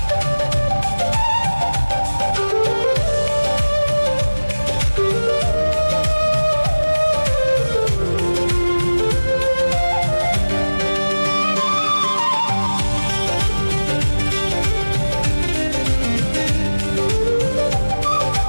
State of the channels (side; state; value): both; inverted; correlation -1.00